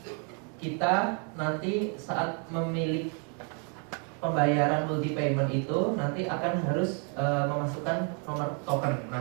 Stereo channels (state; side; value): quieter; left; 39.1 dB